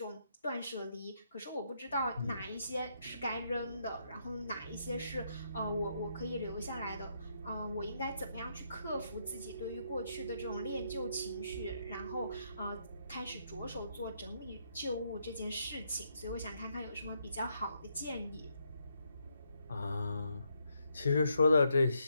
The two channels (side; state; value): both; inverted; correlation -0.77